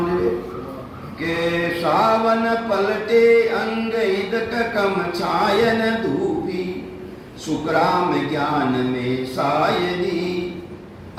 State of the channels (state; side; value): identical; both; correlation 1.00